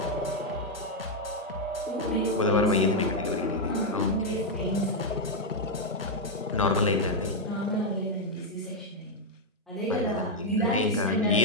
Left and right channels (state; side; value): normal; both; correlation 0.00